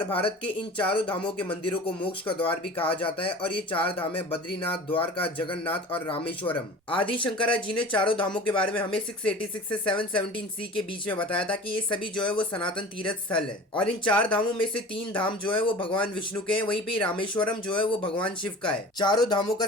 भारत के इन चारों धामों के मंदिरों को मोक्ष का द्वार भी कहा जाता है। और ये चार धाम है बद्रीनाथ, द्वारका, जगन्नाथ और रामेश्वरम। आदि शंकरा जी ने चारों धामों के बारे में हमें 686 से 717 सी के बीच में बताया था कि ये सभी जो है वो सनातन तीर्थ स्थल है। और इन चार धामों में से तीन धाम जो है वो भगवान विष्णु के हैं, वहीं पे रामेश्वरम जो है वो भगवान शिव का है। चारों धामों का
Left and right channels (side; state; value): both; normal; correlation 0.39